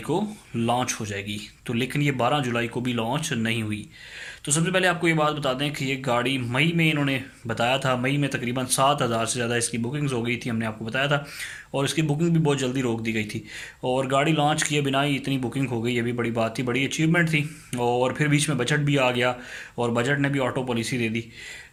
को लॉन्च हो जाएगी, तो लेकिन ये 12 जुलाई को भी लॉन्च नहीं हुई। तो सबसे पहले आपको ये बात बता दें कि ये गाड़ी मई में इन्होंने बताया था। मई में तकरीबन 7,000 से ज़्यादा इसकी बुकिंग्स हो गई थी, हमने आपको बताया था, और इसकी बुकिंग भी बहुत जल्दी रोक दी गई थी। और गाड़ी लॉन्च किए बिना ही इतनी बुकिंग हो गई, ये भी बड़ी बात थी, बड़ी अचीवमेंट थी। और फिर बीच में बजट भी आ गया और बजट ने भी ऑटो पॉलिसी दे दी।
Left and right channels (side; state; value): both; identical; correlation 1.00